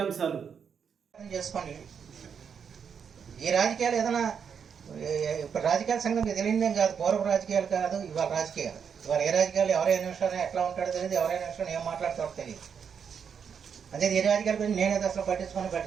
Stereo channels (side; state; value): left; quieter; 7.0 dB